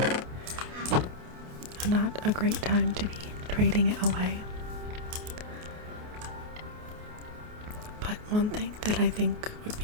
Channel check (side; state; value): left; late; 28 ms